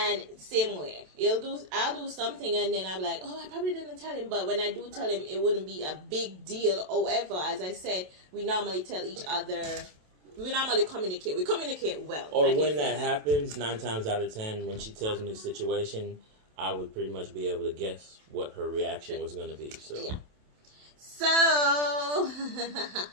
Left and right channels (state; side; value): late; left; 27 ms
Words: same way, I'll do something and then I'm like, oh, I probably didn't tell him. But when I do tell him, it wouldn't be a big deal. However, as I said, we normally tell each other, we normally communicate. We communicate well. Or when that happens, 9 times out of 10, when she tells me the situation, I would pretty much be able to guess what her reaction was going to be. So, yeah. So, I